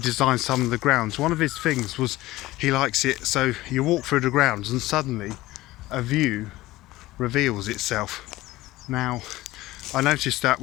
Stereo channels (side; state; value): right; quieter; 17.7 dB